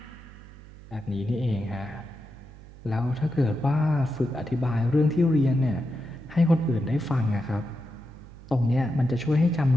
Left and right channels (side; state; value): right; noise; hum, 18 dB below the sound